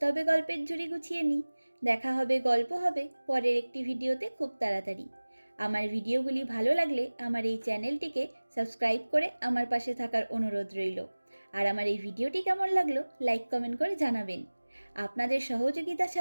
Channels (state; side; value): inverted; both; correlation -1.00